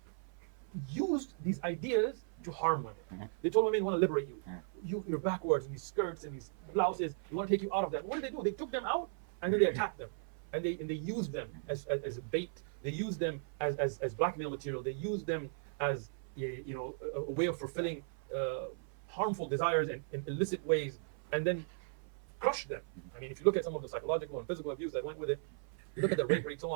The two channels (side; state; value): left; silent; 53 dB below the other